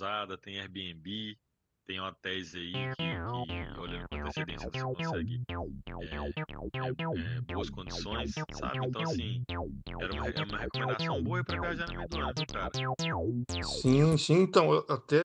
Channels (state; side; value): identical; both; correlation 1.00